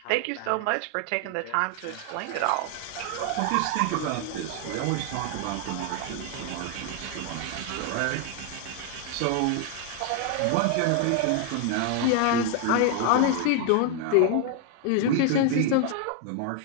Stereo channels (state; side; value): different; both; correlation 0.01